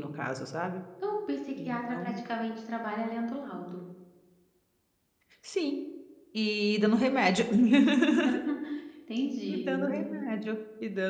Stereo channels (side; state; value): both; identical; correlation 1.00